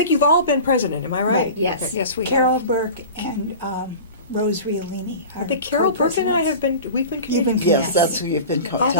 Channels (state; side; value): inverted; both; correlation -0.35